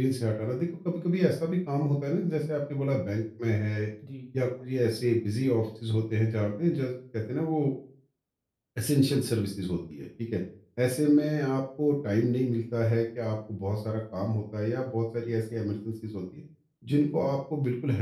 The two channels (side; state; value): both; identical; correlation 1.00